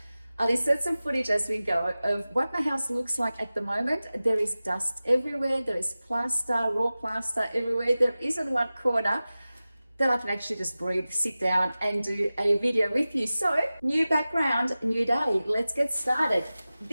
I'll insert some footage as we go of what my house looks like at the moment. There is dust everywhere. There is plaster, raw plaster everywhere. There isn't one corner that I can actually just breathe, sit down and do a video with you. So, new background, new day. Let's get started.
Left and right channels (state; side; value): inverted; both; correlation -0.96